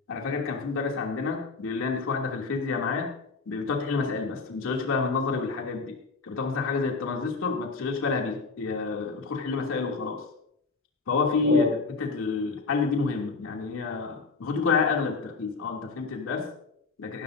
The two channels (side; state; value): right; quieter; 4.2 dB